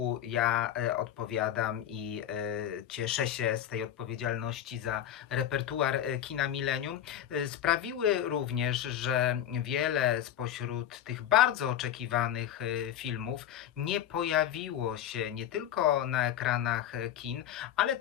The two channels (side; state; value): right; quieter; 10.8 dB